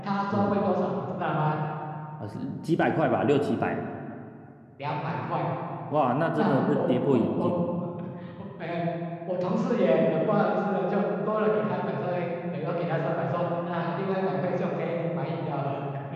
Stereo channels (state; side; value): identical; both; correlation 1.00